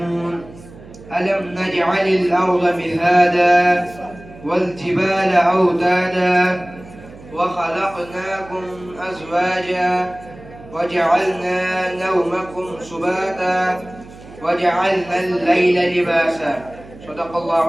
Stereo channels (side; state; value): right; noise; hum, 19 dB below the sound